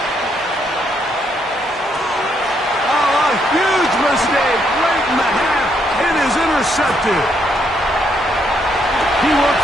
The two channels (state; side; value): normal; both; correlation 0.74